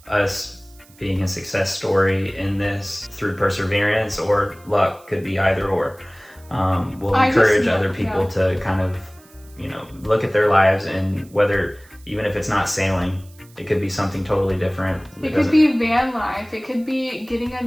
us being a success story in this through perseverance or luck, could be either or, will encourage other people to kind of, you know, look at their lives, and whether, even if it's not sailing, it could be something totally different. It could be van life. It could be getting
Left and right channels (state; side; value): noise; right; hiss, 27 dB below the sound